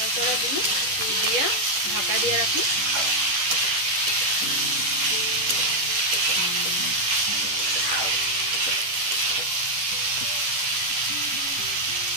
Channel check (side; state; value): left; late; 11 ms